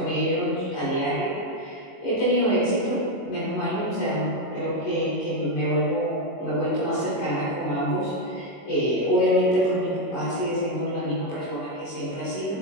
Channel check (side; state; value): right; late; 21 ms